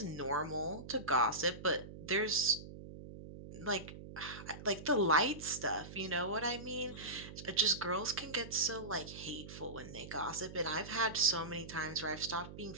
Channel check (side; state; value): right; noise; hum, 13 dB below the sound